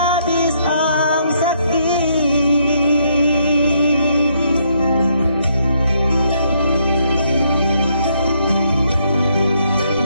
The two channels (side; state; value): both; inverted; correlation -0.73